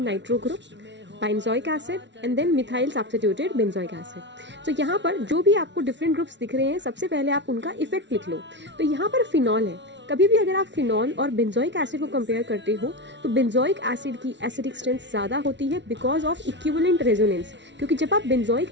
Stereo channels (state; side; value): late; left; 0.52 ms